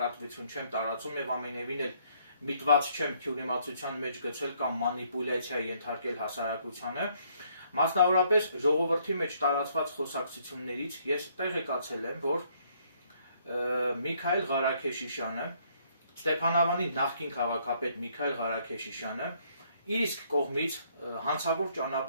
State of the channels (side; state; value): both; inverted; correlation -0.67